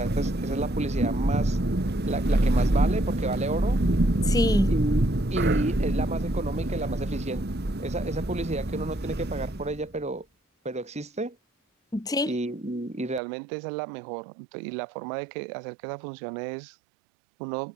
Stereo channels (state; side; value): drops out; left; at 13.2 s